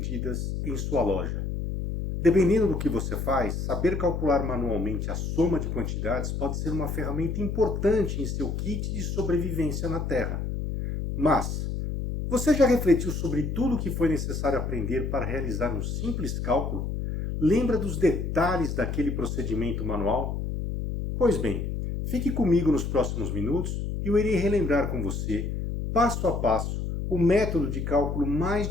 em sua loja? Dependendo do que você faz, saber calcular manualmente a soma de quantidades pode ser uma ferramenta importante em seu kit de sobrevivência na Terra. Mas, você já refletiu sobre tudo o que foi necessário aprender para realizar um simples cálculo? Lembra dos detalhes daquele procedimento manual? Pois bem, fique comigo nos próximos minutos e eu irei relembrar com você, passo a passo, o método de cálculo mais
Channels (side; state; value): left; noise; hum, 3 dB below the sound